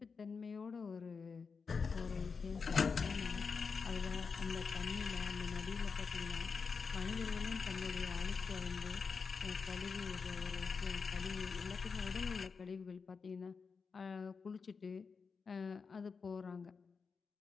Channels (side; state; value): right; quieter; 5.2 dB